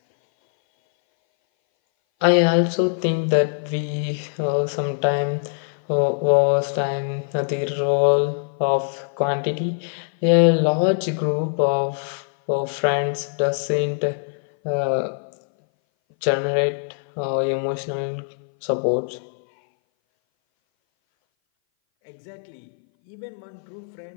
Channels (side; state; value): right; silent; 60 dB below the other